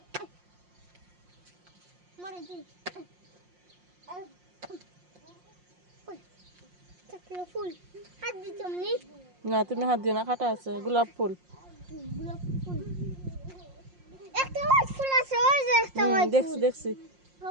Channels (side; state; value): left; late; 5.6 ms